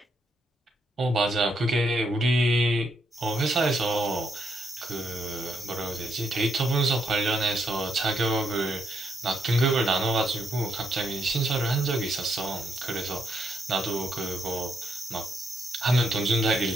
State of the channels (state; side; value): normal; both; correlation 0.77